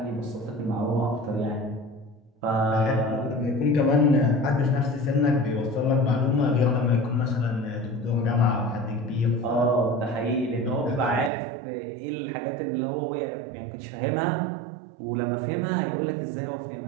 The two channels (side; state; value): left; drops out; at 11.3 s